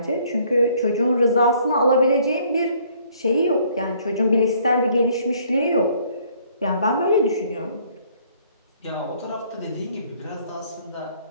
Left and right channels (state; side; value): inverted; both; correlation -0.62